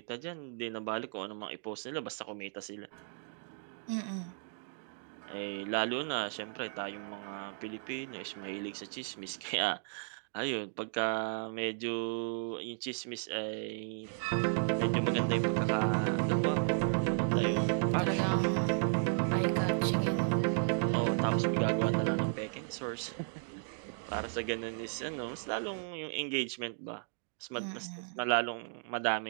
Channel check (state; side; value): silent; left; digital silence